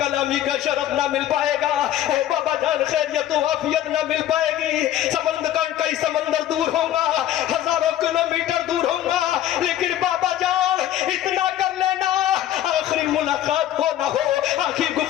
का शरफ ना मिल पाएगा, ऐ बाबा जान खैरियत व आफियत ना मिल पाएगी। समंदर का कई समंदर दूर होगा, हजारों किलोमीटर दूर होगा, लेकिन बाबा जान इतना कर लेना, आखिरी मुलाकात हो ना हो, आखिरी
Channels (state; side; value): quieter; right; 12.3 dB